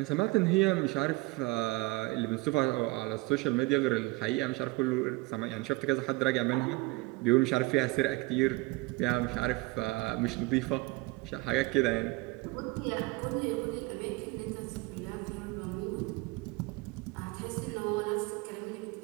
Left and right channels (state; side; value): quieter; left; 23.8 dB